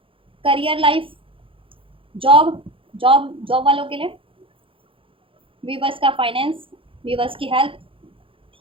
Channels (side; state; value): left; late; 0.26 ms